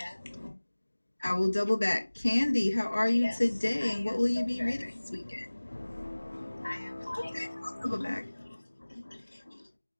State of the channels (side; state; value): both; inverted; correlation -1.00